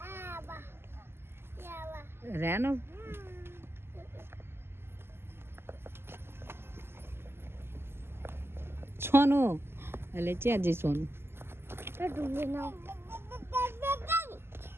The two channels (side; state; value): left; late; 0.12 ms